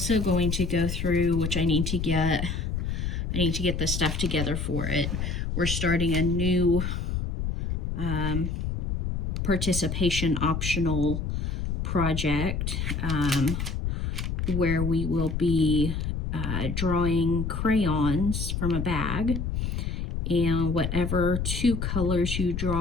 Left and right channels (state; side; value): noise; left; rumble, 2 dB below the sound